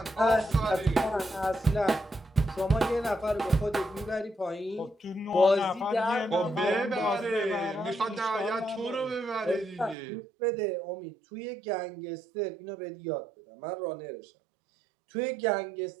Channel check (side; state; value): left; drops out; at 10.0 s